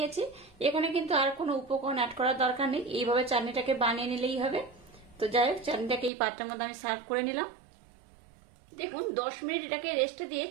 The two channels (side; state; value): left; drops out; at 6.1 s